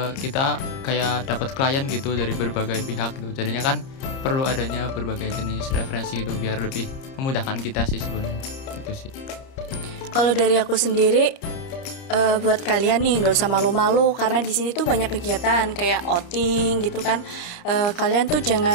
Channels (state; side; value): late; right; 30 ms